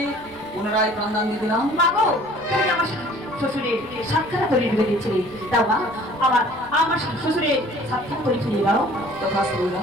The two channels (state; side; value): noise; right; rumble, 23 dB below the sound